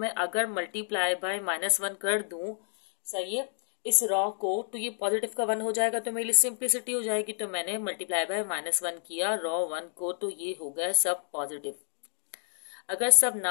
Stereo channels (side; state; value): right; silent; digital silence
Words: अगर मल्टीप्लाई बाय -1 कर दूं, सही है, इस रॉ को, तो ये पॉजिटिव का 1 हो जाएगा, तो मेरी सिंप्लिसिटी हो जाएगी। तो मैंने मल्टीप्लाई बाय -1 किया रॉ 1 को, तो ये हो गया सब पॉजिटिव। अगर सब